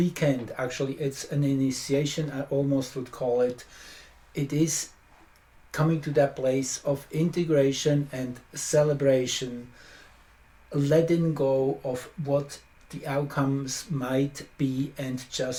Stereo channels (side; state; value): both; identical; correlation 1.00